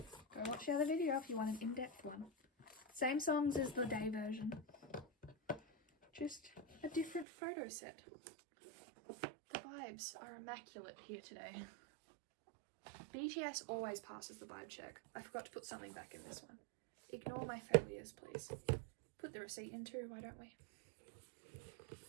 Go watch the other video if you want an in-depth one. Same songs as the day version. Just a different photo set. The vibes are immaculate here today. BTS always passes the vibe check. I forgot to put something back in this one. Ignore my failures, please. Put the receipt in too, why don't we?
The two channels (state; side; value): drops out; left; at 7.2 s